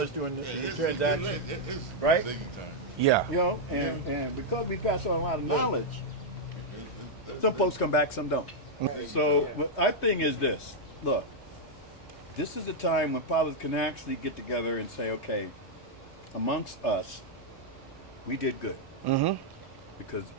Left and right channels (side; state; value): both; normal; correlation -0.03